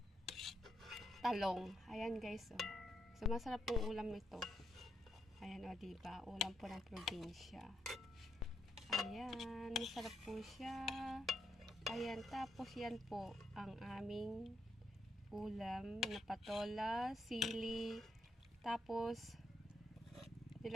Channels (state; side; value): normal; both; correlation 0.78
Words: talong. Ayan guys. Oh. So masarap pong ulam ito. Ayan o, diba? Ulam po ng probinsya. Ayan, masarap po siya. Ayan, tapos yan po ang aming ulam na patola, sili. Tapos,